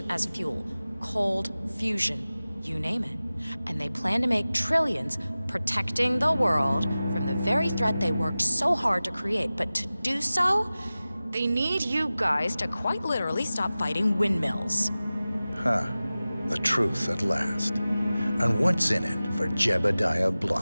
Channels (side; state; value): both; inverted; correlation -0.97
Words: as fuel, cold fusion, you name it. And they plan to make trillions protecting the world from the very threat they worked so hard to create. But to do so, they need you guys to quite literally stop fighting windmills. Huh. The truth at last. And what's in it for Jebediah